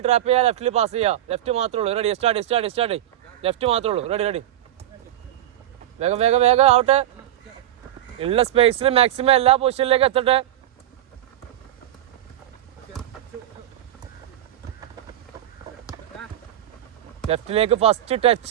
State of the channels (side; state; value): left; quieter; 12.7 dB